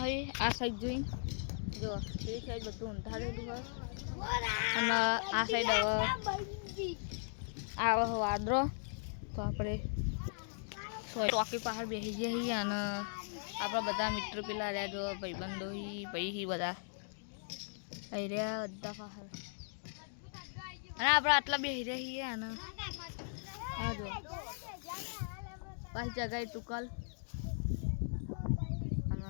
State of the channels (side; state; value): right; silent; digital silence